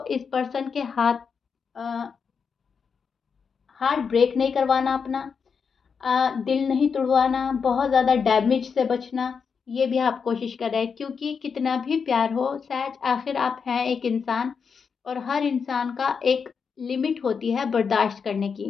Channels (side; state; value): right; quieter; 6.0 dB